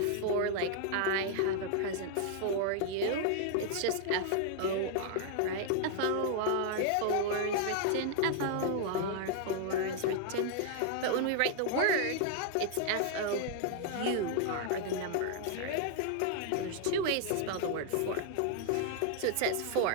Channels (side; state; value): both; different; correlation 0.00